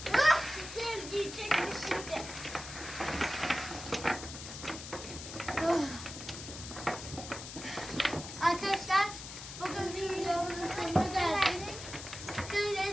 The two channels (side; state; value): left; noise; hiss, 10 dB below the sound